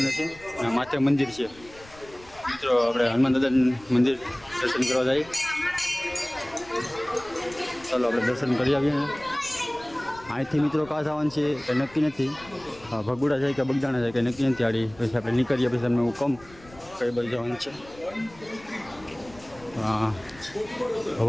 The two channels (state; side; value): noise; left; rumble, 23 dB below the sound